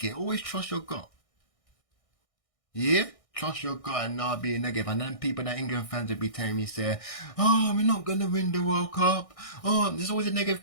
it. Always trust your gut. Yeah? Trust your gut and not be negative. And then people that England fans will be telling me, say, oh, we're not going to win the World Cup. Oh, there's always a negative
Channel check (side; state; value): right; late; 1.6 ms